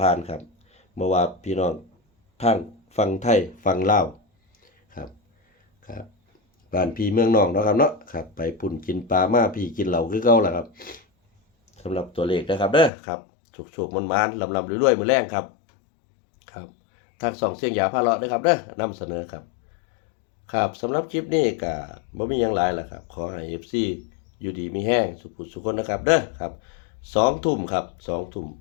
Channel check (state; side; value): drops out; right; at 12.9 s